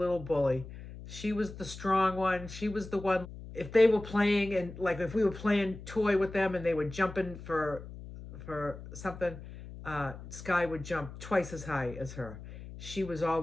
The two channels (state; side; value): noise; left; hum, 13 dB below the sound